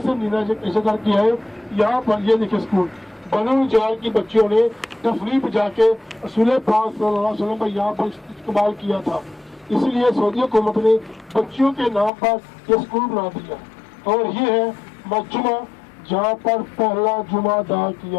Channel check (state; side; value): drops out; right; at 12.1 s